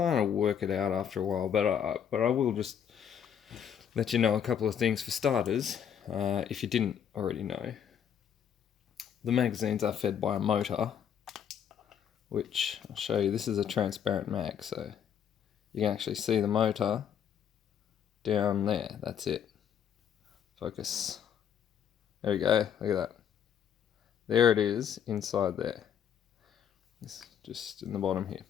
of work it out after a while, but I will just let you know a couple of things. For starters, if you didn't already know, the magazines are fed by a motor, which I'll show you. This is a transparent mag, so you can actually see the motor down there. That's it. Focus. There we go. Look at that. There it is inside there. It's just in the bottom here.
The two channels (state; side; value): quieter; right; 8.6 dB